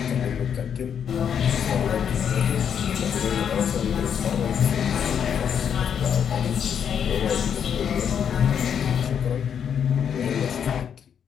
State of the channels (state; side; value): quieter; right; 8.0 dB